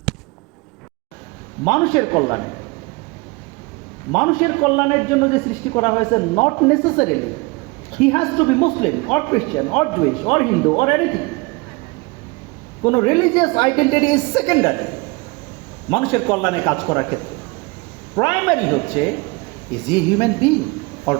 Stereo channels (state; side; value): quieter; left; 25.8 dB